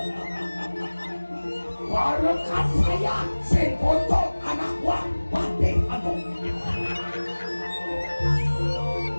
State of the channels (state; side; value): inverted; both; correlation -1.00